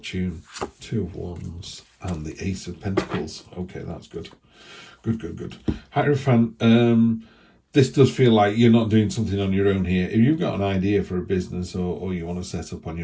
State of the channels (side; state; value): both; identical; correlation 1.00